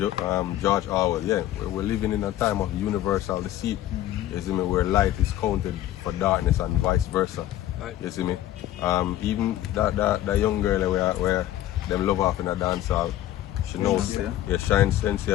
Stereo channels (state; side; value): quieter; right; 13.4 dB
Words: George Orwell. Yeah, we're living in a time of universal deceit. You see me, where light is counted for darkness and vice versa. Right. You see me, even that young girl where them love off in a dance hall, she knows. Yeah, Shine